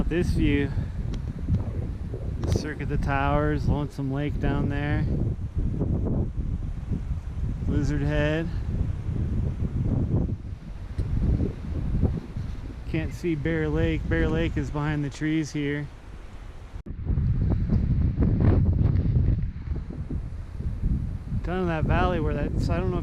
this view. Cirque of the Towers, Lonesome Lake down there. Lizard Head. Can't see Bear Lake. Bear Lake is behind the trees here. Down in that valley where that's, I don't know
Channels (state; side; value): identical; both; correlation 1.00